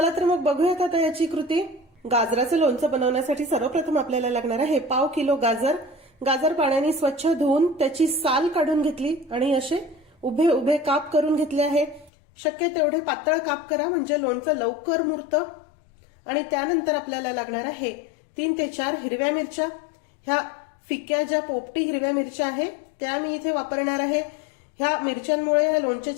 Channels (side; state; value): right; drops out; at 12.1 s